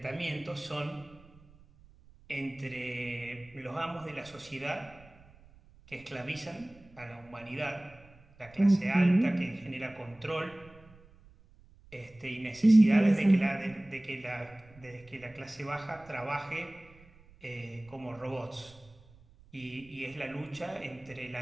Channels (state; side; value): noise; right; rumble, 25 dB below the sound